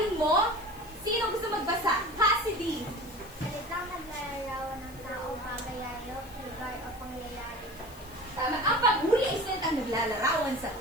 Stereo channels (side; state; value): left; noise; hiss, 21 dB below the sound